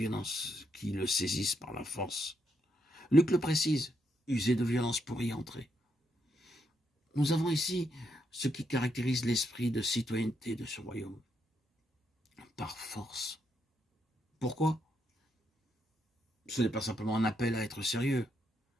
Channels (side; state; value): both; normal; correlation 0.78